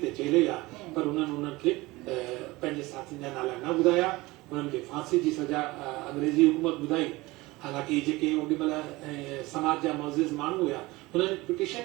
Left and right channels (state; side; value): quieter; left; 21.0 dB